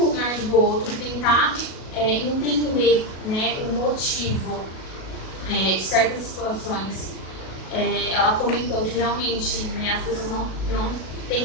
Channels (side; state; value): right; late; 37 ms